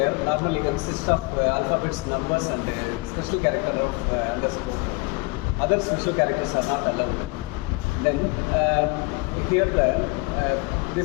normally consists of alphabets, numbers and special character of underscore. Other special characters are not allowed. Then here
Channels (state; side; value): quieter; right; 26.0 dB